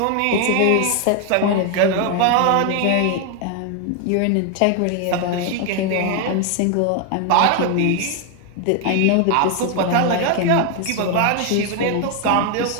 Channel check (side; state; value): both; different; correlation 0.01